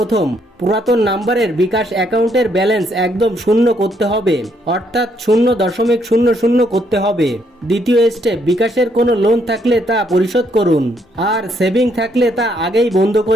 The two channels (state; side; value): normal; both; correlation 0.72